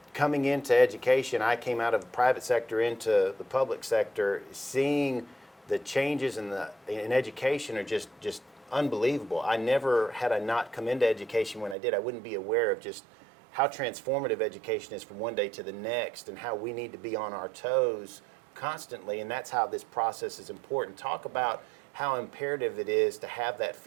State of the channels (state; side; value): drops out; left; at 11.8 s